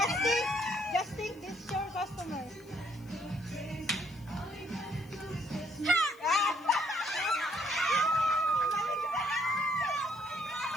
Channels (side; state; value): left; noise; hiss, 27 dB below the sound